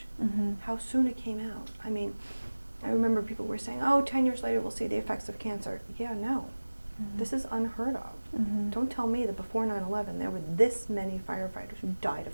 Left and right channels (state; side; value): inverted; both; correlation -1.00